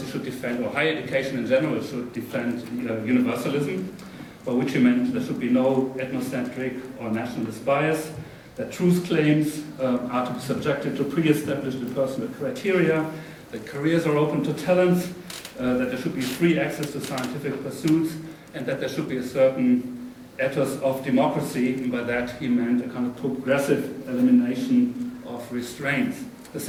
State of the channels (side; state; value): both; identical; correlation 1.00